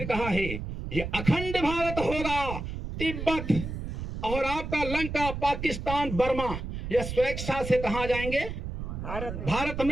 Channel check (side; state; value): right; noise; rumble, 6 dB below the sound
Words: कहा है ये अखंड भारत होगा। तिब्बत और आपका लंका, पाकिस्तान, बर्मा, ये स्वेच्छा से कहाँ जाएंगे? भारत